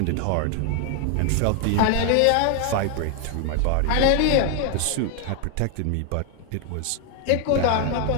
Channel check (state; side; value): different; both; correlation 0.00